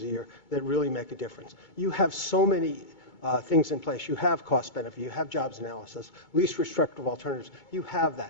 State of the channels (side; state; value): right; late; 2.2 ms